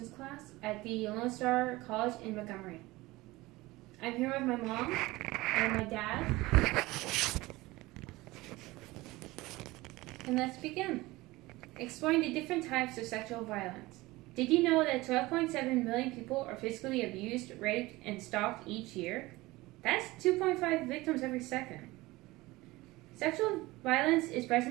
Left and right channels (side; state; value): left; quieter; 20.2 dB